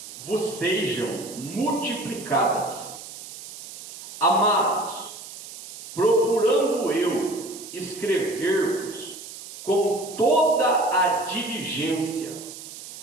multiplicadas. Amados, procurando eu escrever-vos com toda a diligência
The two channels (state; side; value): noise; right; hiss, 13 dB below the sound